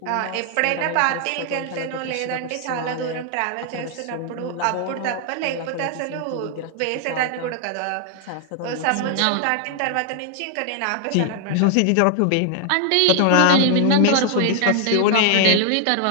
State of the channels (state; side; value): different; both; correlation 0.00